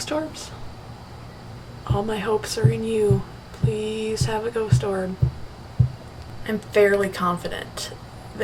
orbs? All my hopes are in you. Please have a ghost orb. I'm fairly confident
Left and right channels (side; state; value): both; identical; correlation 1.00